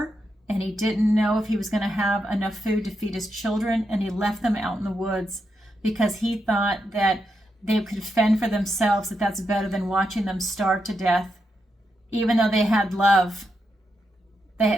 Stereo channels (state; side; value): normal; both; correlation 0.84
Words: and he didn't know if he was going to have enough food to feed his children, and he left them out in the woods because he thought that they could fend for themselves, that that's better than watching them starve to death. Even though they had love,